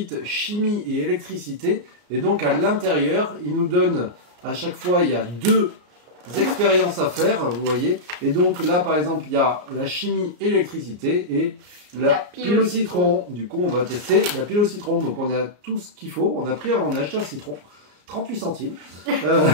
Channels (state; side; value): late; left; 34 ms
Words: chimie et électricité. Et donc à l'intérieur, il nous donne à chaque fois, il y a deux expériences à faire, vous voyez. Et donc là par exemple, il y a la chimie et l'électricité et la pile au citron. Du coup, on va tester la pile au citron. Donc, on a tout ce qu'il faut. On a acheté un citron, 38 centimes,